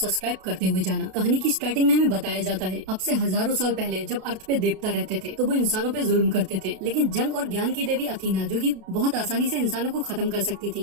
करते हुए जाना। कहानी की स्टार्टिंग में हमें बताया जाता है अब से हजारों साल पहले जब अर्थ पे देवता रहते थे तो वो इंसानों पे जुल्म करते थे, लेकिन जंग और ज्ञान की देवी अथीना, जो कि बहुत आसानी से इंसानों को खत्म कर सकती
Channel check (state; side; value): late; left; 32 ms